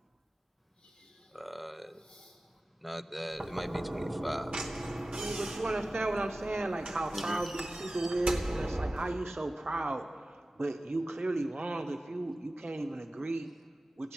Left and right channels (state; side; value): normal; both; correlation 0.96